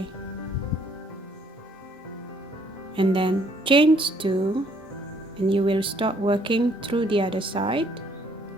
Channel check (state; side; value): normal; both; correlation 0.65